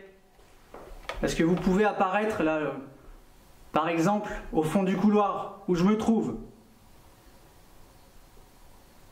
Parce que vous pouvez apparaître là, par exemple, au fond du couloir où je me trouve.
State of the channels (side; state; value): both; identical; correlation 1.00